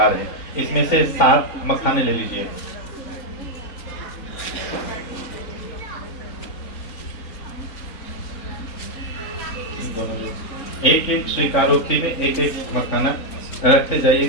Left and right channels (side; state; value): right; late; 3.6 ms